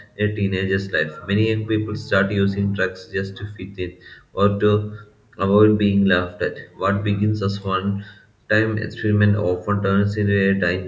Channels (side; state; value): both; identical; correlation 1.00